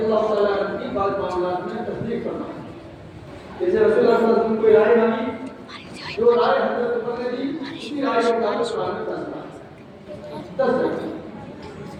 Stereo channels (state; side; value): identical; both; correlation 1.00